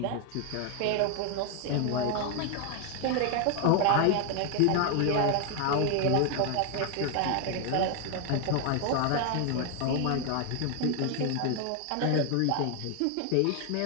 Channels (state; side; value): different; both; correlation 0.01